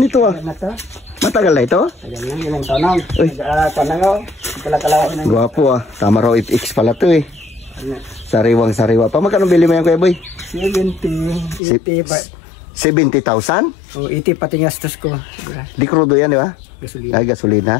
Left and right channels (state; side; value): drops out; right; at 11.6 s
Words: ito ah. Na to. Matagal na ito? Ayan lang, ilang tanong. Uy. Tanong, pala-kalawa ng Gwapo ah. Tama raw FX pala to eh. Sariwang-sariwa pa. Magkano bili mo yan kuya boy? 70, 80 ba? 70,000? O, 80 pati gastos ko. Di crudo yan di ba? Gasolina. Ay,